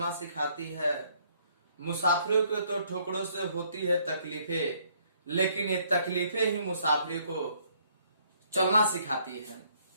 सिखाती है। मुसाफिरों को तो ठोकरों से होती है तकलीफें, लेकिन ये तकलीफें ही मुसाफिरों को चलना सिखाती है।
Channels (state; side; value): inverted; both; correlation -0.66